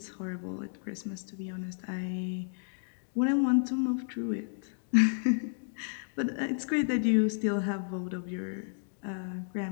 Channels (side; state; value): right; silent; 56 dB below the other